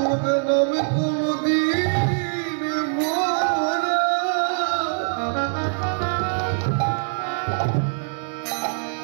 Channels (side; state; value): left; silent; digital silence